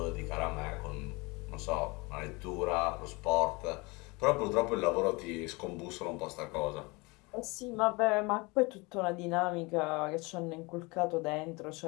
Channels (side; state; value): right; quieter; 26.1 dB